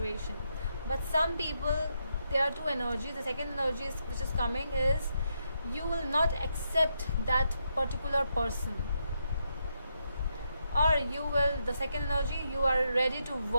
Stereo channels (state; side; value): inverted; both; correlation -0.81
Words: But some people, there are two energies. The second energy which is coming is, you will not accept that particular person. Or the second energy, you are ready to